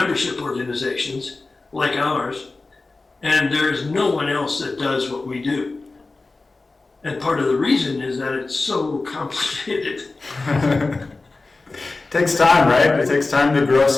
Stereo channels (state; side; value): quieter; right; 3.5 dB